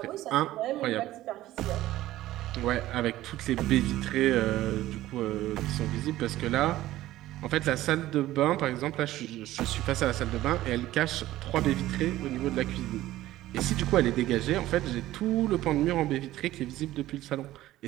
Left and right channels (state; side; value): quieter; left; 15.3 dB